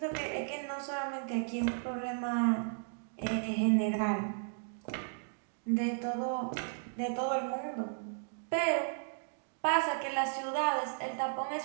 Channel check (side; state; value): left; silent; digital silence